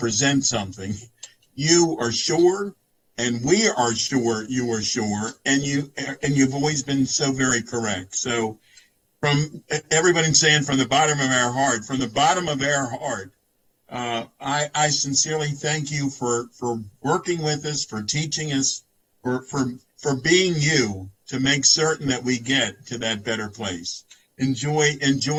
something, you are sure, and we are sure you are sure, and you've always been so very correct. So from everybody saying from the bottom of our heart, I sincerely thank you for working with us, for teaching us, for being you to make certain that we get to that better place. Enjoy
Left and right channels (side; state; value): both; identical; correlation 1.00